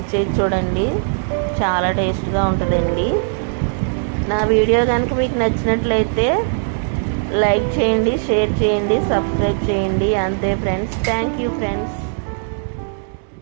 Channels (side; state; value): left; silent; 65 dB below the other